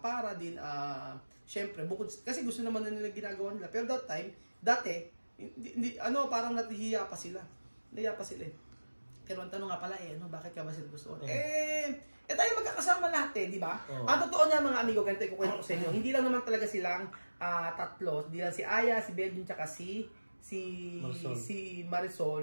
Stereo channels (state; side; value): inverted; both; correlation -1.00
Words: para din, syempre, bukod, kasi gusto naman na nila ginagawa nila. Pero dati, parang natihiya pa sila. Nahiya pa sila eh. Pero ang tanong nga pala bakit ka ba sila gusto? Tayo magkakasama lahat di ba? Ang totoo niya mga amigo, ganito ikukwento ko sa inyo. Hindi lang naman talaga silang tatlo. Hindi lang si Aya, si Belgium, tsaka si